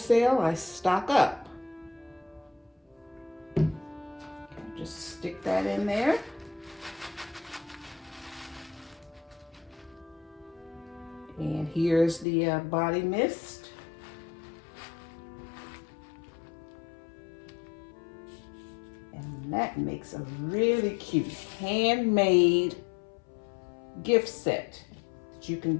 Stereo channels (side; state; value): right; drops out; at 12.2 s